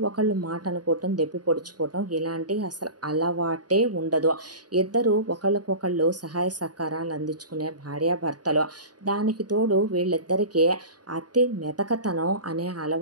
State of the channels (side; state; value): left; late; 0.69 ms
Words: ఒకళ్ళు మాట అనుకోవటం, దెప్పి పొడుచుకోవటం ఇలాంటి అసలు అలవాటే ఉండదు. ఇద్దరు ఒకళ్ళకొకళ్ళు సహాయ సహకారాలు అందించుకునే భార్యాభర్తలు. దానికి తోడు వీళ్ళిద్దరికీ అతి మెతకతనం అనే